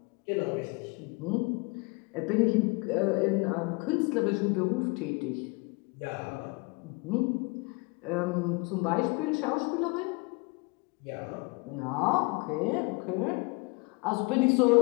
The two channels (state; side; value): quieter; right; 28.3 dB